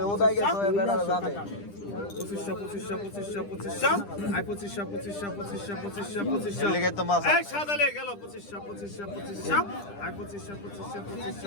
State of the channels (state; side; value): late; right; 10 ms